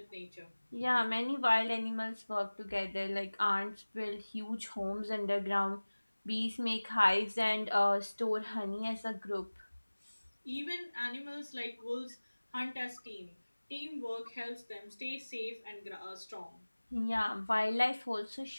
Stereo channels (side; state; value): both; inverted; correlation -1.00